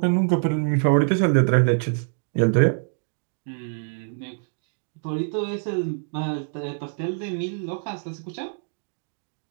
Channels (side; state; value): left; silent; digital silence